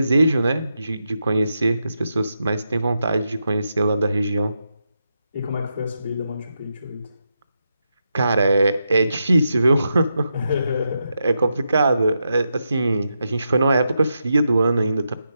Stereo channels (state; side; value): inverted; both; correlation -0.85